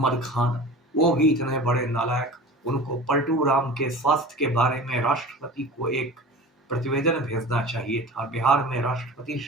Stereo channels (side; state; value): both; normal; correlation 0.37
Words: खान, वो भी इतने बड़े नालायक। उनको पलटू राम के स्वास्थ्य के बारे में राष्ट्रपति को एक प्रतिवेदन भेजना चाहिए था। बिहार में राष्ट्रपति